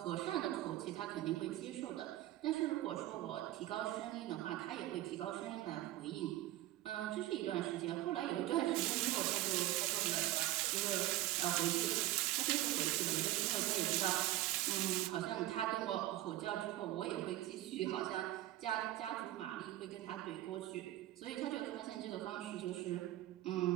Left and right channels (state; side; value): quieter; left; 15.6 dB